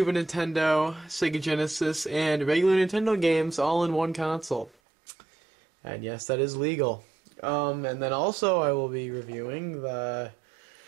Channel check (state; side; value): drops out; left; at 4.7 s